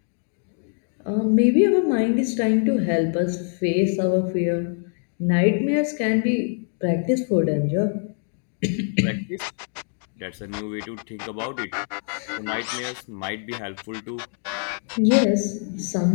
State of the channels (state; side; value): silent; right; 58 dB below the other